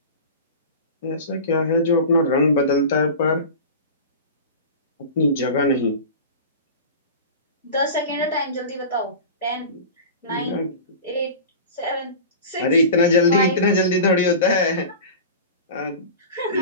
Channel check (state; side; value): inverted; both; correlation -0.33